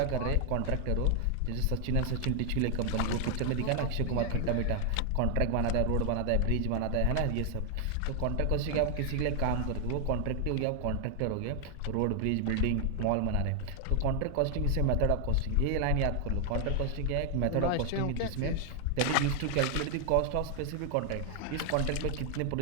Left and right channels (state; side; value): different; both; correlation 0.00